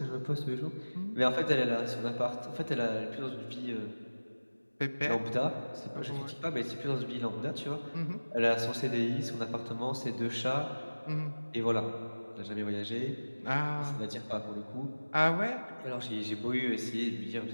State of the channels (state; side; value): inverted; both; correlation -1.00